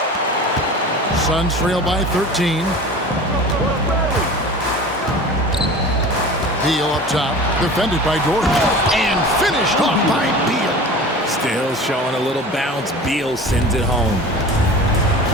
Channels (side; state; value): both; normal; correlation 0.37